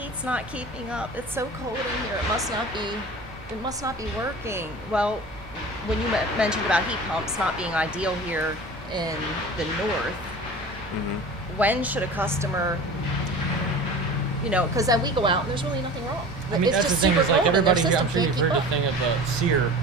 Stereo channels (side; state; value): both; normal; correlation 0.37